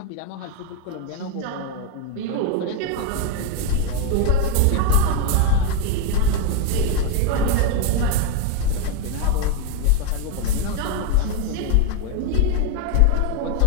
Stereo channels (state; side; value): different; both; correlation 0.01